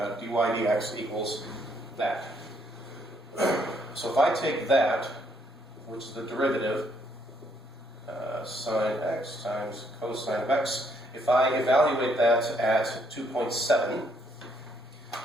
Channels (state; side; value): normal; both; correlation 0.70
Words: dy dx equals that. So if I take that, which is the derivative, sine x times cosine of x, if I evaluate that at 2.7,